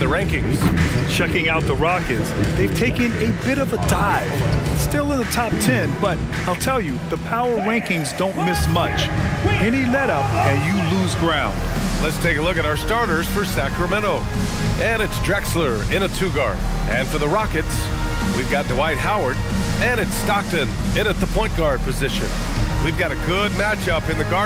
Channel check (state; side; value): identical; both; correlation 1.00